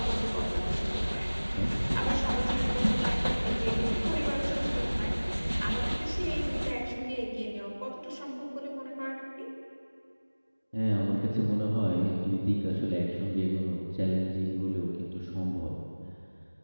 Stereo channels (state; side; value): inverted; both; correlation -1.00